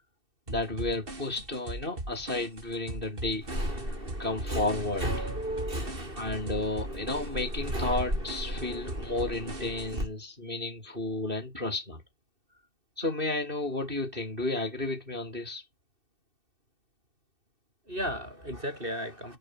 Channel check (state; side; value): late; left; 2.6 ms